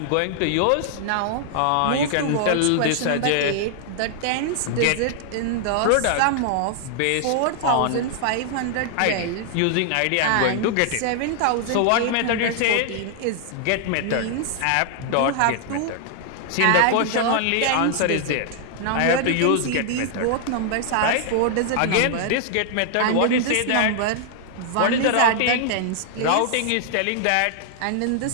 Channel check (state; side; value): different; both; correlation 0.00